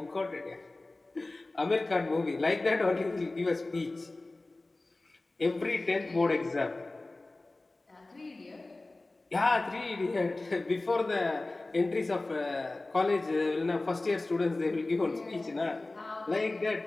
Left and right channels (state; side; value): quieter; right; 3.0 dB